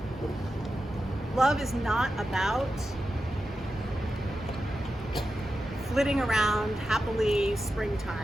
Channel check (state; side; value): normal; both; correlation 0.91